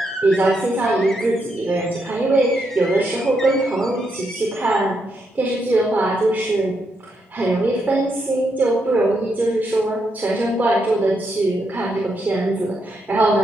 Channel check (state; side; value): normal; both; correlation 0.80